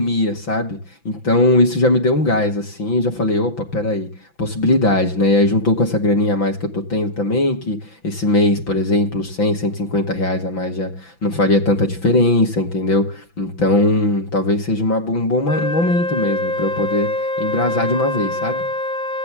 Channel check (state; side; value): late; right; 5.9 ms